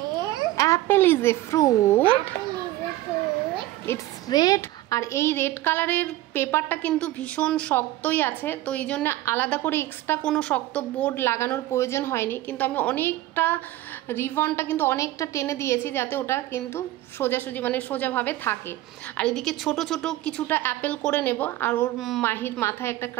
Apple is a fruit. It's red. আর এই রেড কালারের পেপারটা কিন্তু ভীষণ শক্তই আছে, তো এই জন্য আলাদা করে এক্সট্রা কোনো শক্ত বোর্ড লাগানোর প্রয়োজন হয়নি। কিন্তু আমি অনেকটা রিবনটা কিন্তু অনেকটা টেনে দিয়েছি যাতে ওটা কিন্তু সোজাসুজি মানে সোজাভাবে থাকে। আর এদিকে ছোট ছোট কিছুটা অ্যাপেল করে নেব, আর ওর মাহির মাথায় একটা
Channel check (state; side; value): quieter; left; 15.9 dB